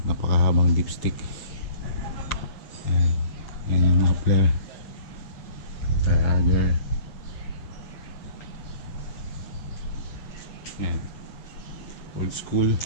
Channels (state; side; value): late; right; 7.6 ms